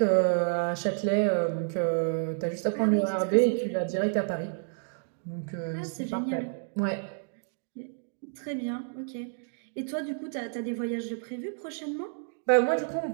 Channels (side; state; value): left; silent; digital silence